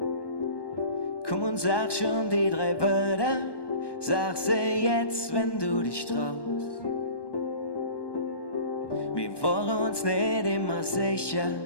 Komm und sag schon die 3 Wörter, sag sie jetzt, wenn du dich traust. Wir waren uns nicht immer sicher,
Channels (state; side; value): late; right; 1.2 ms